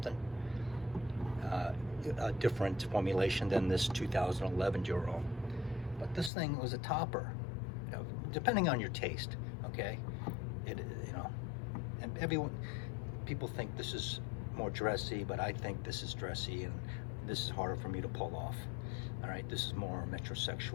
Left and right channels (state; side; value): drops out; right; at 6.3 s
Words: A different formulation than this 2011 Dior Homme, but this thing was a topper, you know, depending on your taste. Okay, you know, and people think this is more dressy, but I think this is dressy, and this is harder for me to pull off. All right, this is more